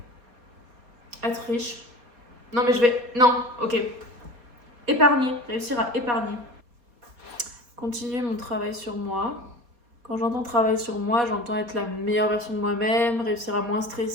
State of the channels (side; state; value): left; late; 4.2 ms